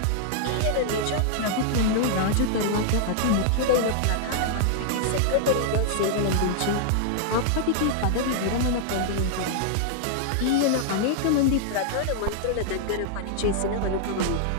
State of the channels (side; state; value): both; different; correlation -0.01